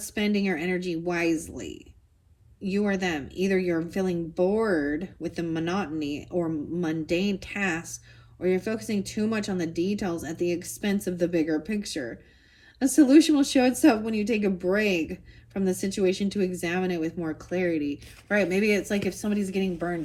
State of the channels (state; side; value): identical; both; correlation 1.00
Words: spending your energy wisely. You or them. Either you're feeling bored with the monotony or mundane tasks, or you're focusing too much on the details at the expense of the bigger picture. A solution will show itself when you take a break from the situation to examine it with more clarity. Right, maybe it's like if somebody's getting